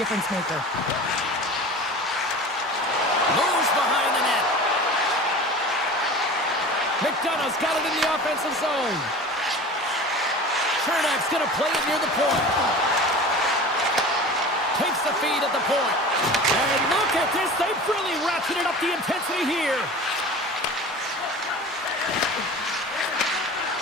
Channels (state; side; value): normal; both; correlation 0.37